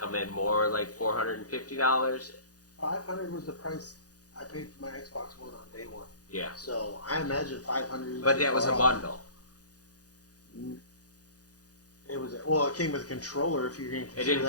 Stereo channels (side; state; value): right; late; 0.67 ms